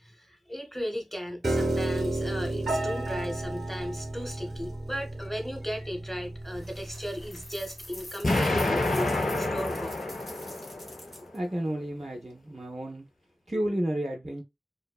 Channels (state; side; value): normal; both; correlation 0.92